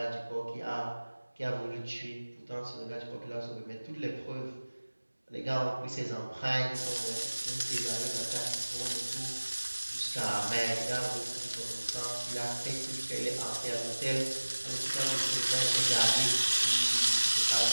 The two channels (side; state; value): both; inverted; correlation -1.00